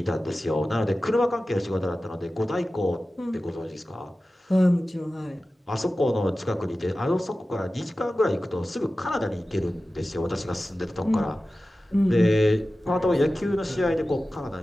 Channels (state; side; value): normal; both; correlation 0.95